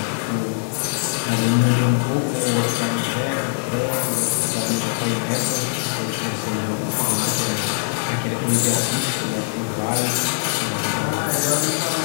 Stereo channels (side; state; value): right; silent; 60 dB below the other